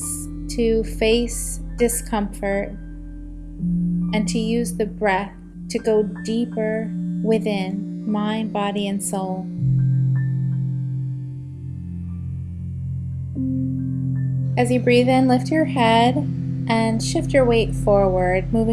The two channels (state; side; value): identical; both; correlation 1.00